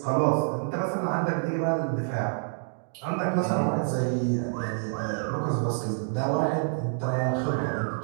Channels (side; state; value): left; silent; digital silence